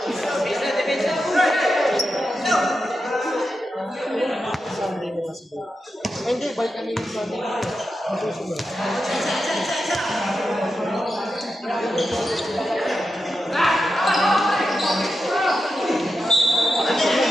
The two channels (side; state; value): both; normal; correlation 0.88